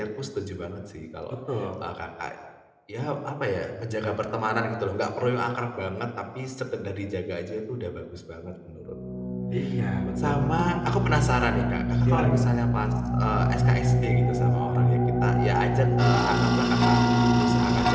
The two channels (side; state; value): both; identical; correlation 1.00